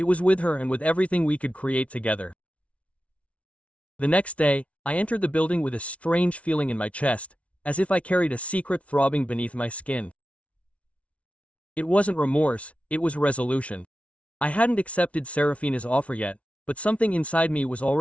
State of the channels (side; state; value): right; late; 0.064 ms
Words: was with her and with everything we could create together. The next day, I entered the building with a strange feeling in my chest, as if I carried a secret throbbing beneath my skin. It wasn't remorse, it was resolution. I hadn't accepted Serafina's offer yet, but something inside me was